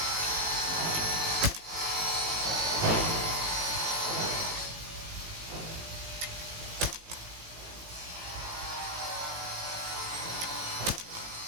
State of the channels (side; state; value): left; late; 18 ms